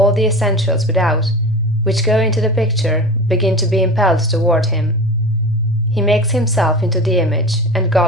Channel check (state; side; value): normal; both; correlation 0.31